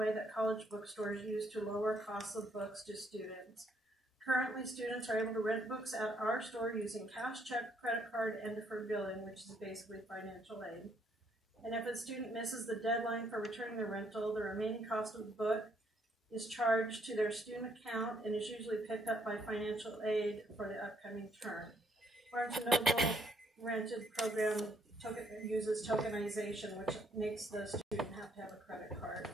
that college bookstores use to lower costs of books to students. Currently, students are able to rent books at our store using cash, check, credit card, and deferred billing, which is basically financial aid. And if a student misses the deadline for returning the rental, the remaining cost of the book is charged to their student account and is usually picked up by financial aid for the upcoming term. Barnes & Noble rented program uses tokenization, which makes the student have to have a credit card,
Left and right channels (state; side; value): normal; both; correlation 0.70